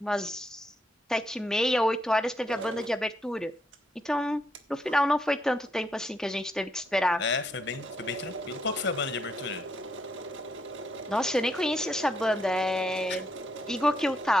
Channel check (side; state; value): both; normal; correlation 0.77